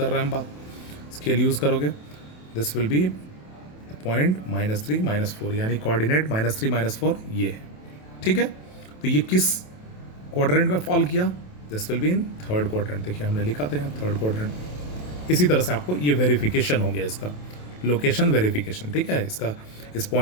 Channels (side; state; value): right; late; 27 ms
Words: रहे हैं हम बात, स्केल यूज़ करोगे, दिस विल बी पॉइंट -3 -4, यानी कोऑर्डिनेट -3 -4 ये है, ठीक है। तो ये किस क्वाड्रेंट में फॉल किया, this will be in third quadrant. देखिए हमने लिखा था यहाँ थर्ड क्वाड्रेंट। इसी तरह से आपको ये वेरिफिकेशन हो गया, इसका लोकेशन वेरिफिकेशन, ठीक है। इसका इस